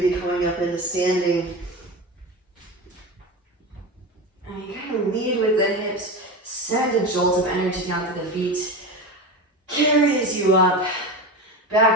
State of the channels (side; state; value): both; normal; correlation 0.24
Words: coming up into standing. And you kind of lead with the hips, send a jolt of energy down to the feet, carries you up,